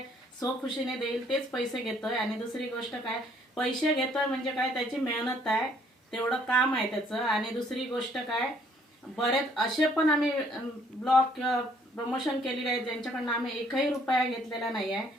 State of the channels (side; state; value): both; normal; correlation 0.63